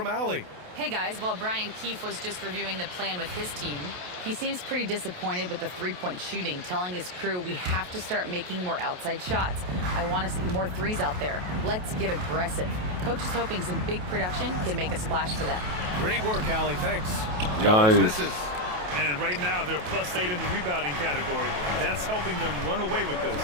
Allie. Hey guys, while Brian Keefe was just reviewing the plan with his team, he seems pretty disappointed with the three-point shooting, telling his crew we have to start making more outside shots. I want to see more threes out there. Let's get aggressive. Coach is hoping some big production can make a splash for them. Great work, Allie. Thanks. Nice. Misses. And right now, they're +8 in the rebounding category. That's helping them run away with this.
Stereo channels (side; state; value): left; late; 28 ms